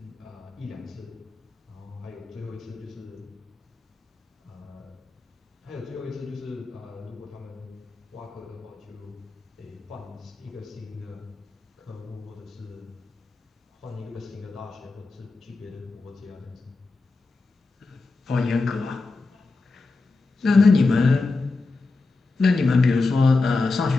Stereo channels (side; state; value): right; quieter; 3.7 dB